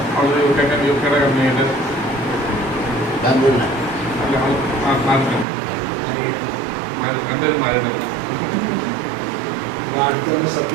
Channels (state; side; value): drops out; left; at 5.5 s